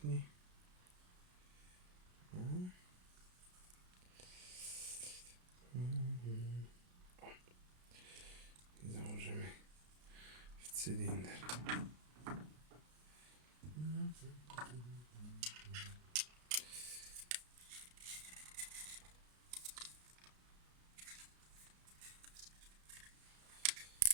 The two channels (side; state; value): left; late; 33 ms